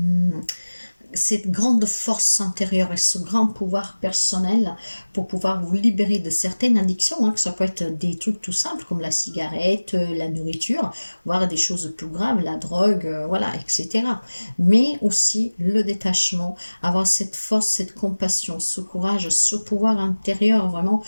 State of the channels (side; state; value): both; inverted; correlation -1.00